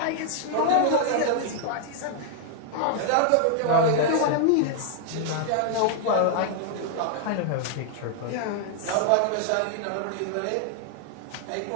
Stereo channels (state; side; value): different; both; correlation 0.00